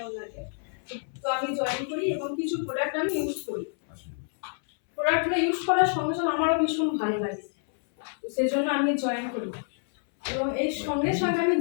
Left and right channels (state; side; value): silent; right; 60 dB below the other